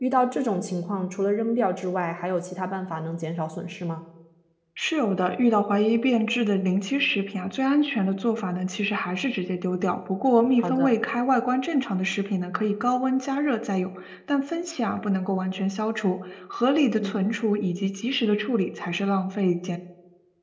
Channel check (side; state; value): both; identical; correlation 1.00